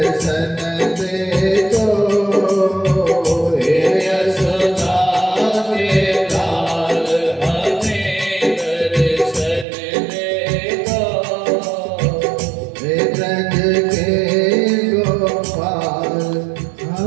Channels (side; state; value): left; drops out; at 9.7 s